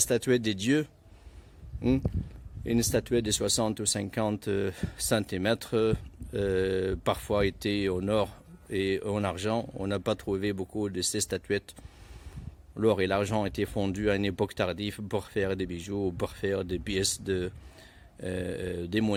des dieux. Une statuette de 60 ou 50 cm, parfois était en or et en argent. On n'a pas trouvé beaucoup de ces statuettes. L'or et l'argent étaient fondus à une époque tardive pour faire des bijoux, pour faire des pièces des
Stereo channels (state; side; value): identical; both; correlation 1.00